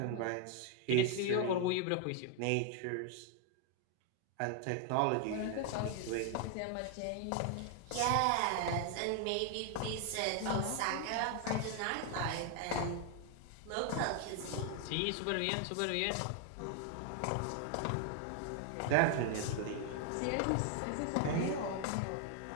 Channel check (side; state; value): both; different; correlation 0.00